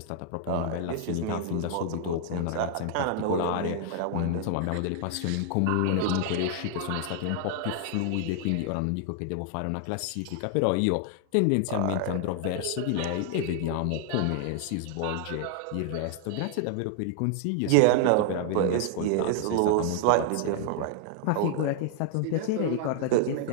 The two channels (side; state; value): both; different; correlation 0.00